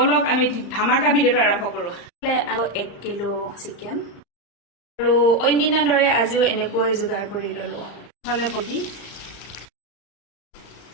আমি ধামাকা ভিডিওটো আৰম্ভ কৰো 1 কিলো চিকেন আৰু অন্যদিনাৰ দৰে আজিও এনেকৈ যোগাৰ কৰি ললো হলে পটি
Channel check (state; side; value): late; right; 35 ms